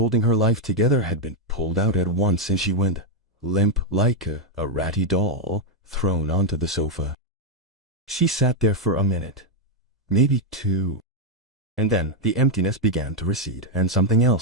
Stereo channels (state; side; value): normal; both; correlation 0.02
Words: her life together had been pulled out at once, and she went limp like a ratty doll thrown onto the sofa. She sat there for a minute, maybe 2. And then the emptiness began to recede, and something